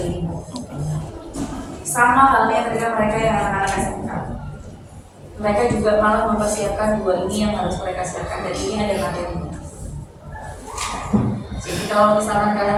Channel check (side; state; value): both; identical; correlation 1.00